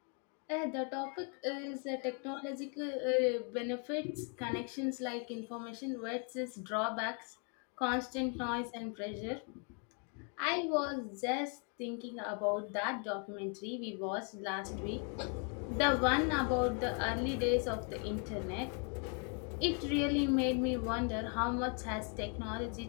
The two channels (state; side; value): quieter; right; 39.8 dB